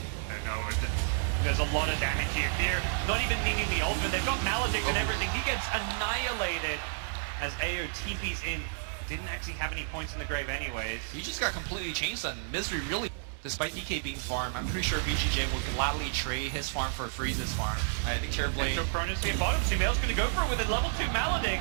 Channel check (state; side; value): silent; left; 57 dB below the other